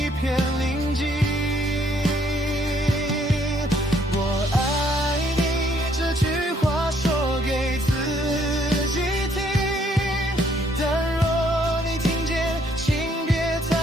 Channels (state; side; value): normal; both; correlation 0.67